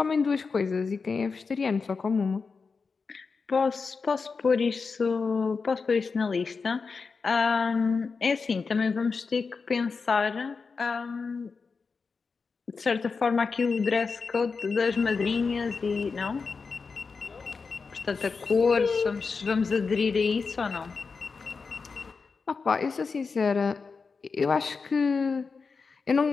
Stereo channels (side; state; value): right; quieter; 4.8 dB